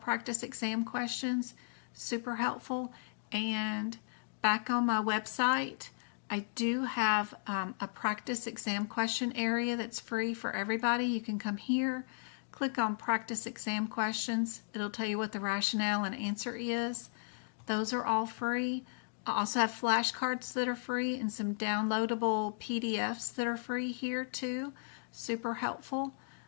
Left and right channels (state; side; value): silent; right; digital silence